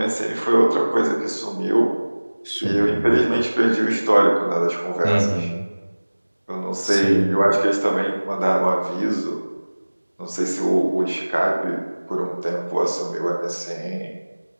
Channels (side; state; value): both; inverted; correlation -1.00